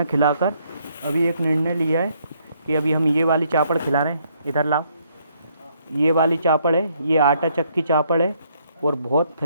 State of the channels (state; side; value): inverted; both; correlation -0.70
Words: खिलाकर अभी एक निर्णय लिया है कि अभी हम ये वाली चापड़ खिला रहे हैं। इधर लाओ, ये वाली चापड़ है, ये आटा चक्की चापड़ है और बहुत